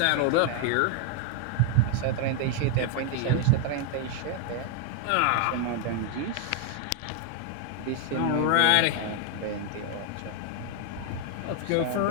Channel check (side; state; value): both; different; correlation 0.00